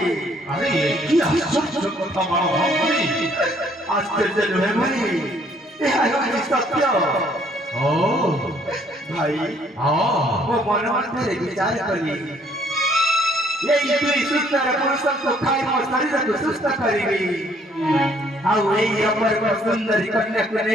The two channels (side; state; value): both; normal; correlation 0.63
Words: আরে কি আশ্চর্য কথা বলো ভাই, আশ্চর্য নহে ভাই, ଏହା ହେଉଛି ସତ୍ୟ। ও ଭାଇ ମୋ ମନ ମଧ୍ୟରେ ବିଚାର କଲି ଏଇ ଦୁଇ ସୁନ୍ଦର ପୁରୁଷଙ୍କୁ ଖାଇ ମୋ ଶରୀରକୁ ସୁସ୍ଥ କରିବି। ଆଉ ଏଇ ଅପୂର୍ବ ସୁନ୍ଦରୀ କନ୍ୟାକୁ